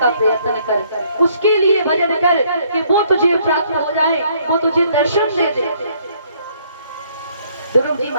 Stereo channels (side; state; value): both; inverted; correlation -0.65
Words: प्रयत्न कर। उसके लिए भजन कर कि वो तुझे प्राप्त हो जाए, वो तुझे दर्शन दे दे। ध्रुव जी